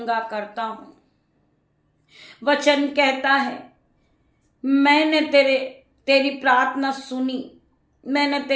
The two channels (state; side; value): identical; both; correlation 1.00